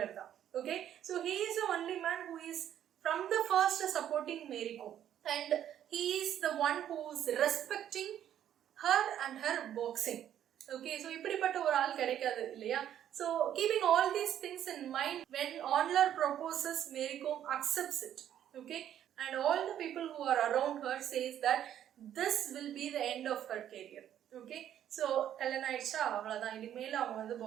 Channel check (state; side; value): quieter; left; 10.6 dB